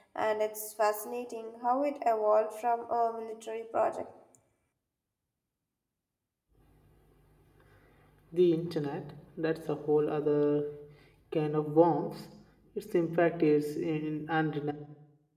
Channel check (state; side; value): identical; both; correlation 1.00